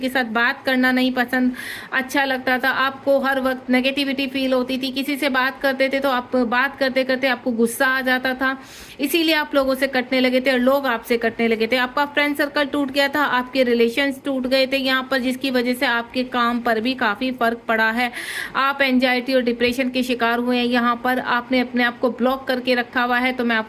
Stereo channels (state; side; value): identical; both; correlation 1.00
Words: साथ बात करना नहीं पसंद अच्छा लगता था, आपको हर वक्त नेगेटिविटी फील होती थी, किसी से बात करते थे तो आप बात करते करते आपको गुस्सा आ जाता था, इसीलिए आप लोगों से कटने लगे थे और लोग आपसे कटने लगे थे। आपका फ्रेंड सर्कल टूट गया था, आपके रिलेशंस टूट गए थे यहाँ पर, जिसकी वजह से आपके काम पर भी काफी फर्क पड़ा है। आप एंजाइटी और डिप्रेशन के शिकार हुए हैं यहाँ पर, आपने अपने आप को ब्लॉक करके रखा हुआ है। तो मैं